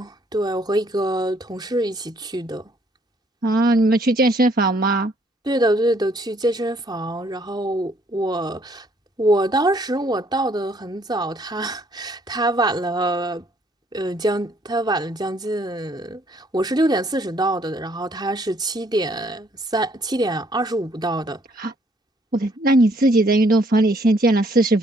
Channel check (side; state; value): both; normal; correlation 0.65